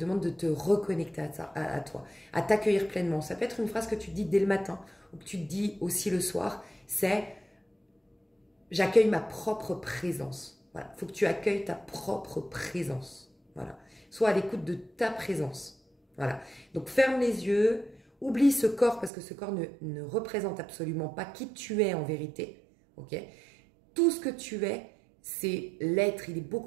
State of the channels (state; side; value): drops out; left; at 19.1 s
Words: de te reconnecter à toi, à t'accueillir pleinement. Ça peut être une phrase que tu te dis dès le matin ou que tu te dis aussi le soir, c'est « j'accueille ma propre présence ». Voilà, il faut que tu accueilles ta propre présence. Voilà. Sois à l'écoute de ta présence. Voilà. Donc, ferme les yeux, oublie ce corps parce que ce corps ne représente absolument pas qui tu es en vérité. Ok? Tout ce que tu es, c'est l'être. Il est